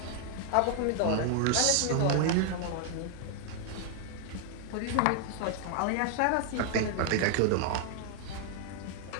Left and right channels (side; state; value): both; different; correlation 0.00